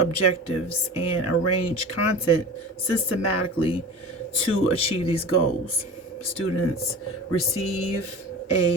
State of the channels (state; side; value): normal; both; correlation 0.34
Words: and arrange content systematically to achieve these goals. Students receive